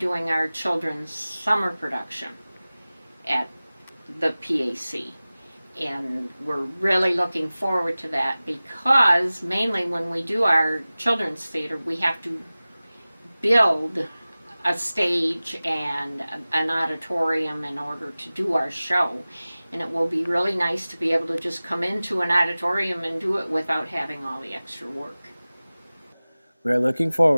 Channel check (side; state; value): both; inverted; correlation -0.98